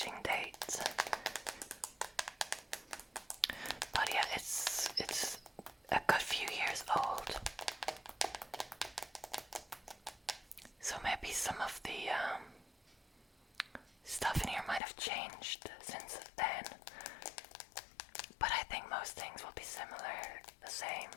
date. But yeah, it's a good few years old. So maybe some of the stuff in here might have changed since then. But I think most things will be similar, the same.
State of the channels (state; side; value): drops out; right; at 14.8 s